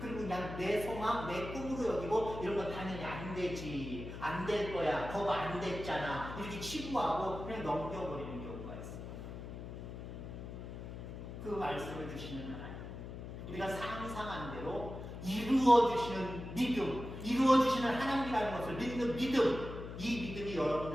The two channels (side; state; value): left; noise; hum, 9 dB below the sound